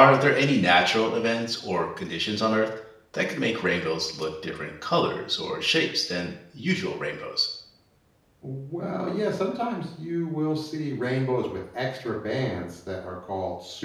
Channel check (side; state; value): both; identical; correlation 1.00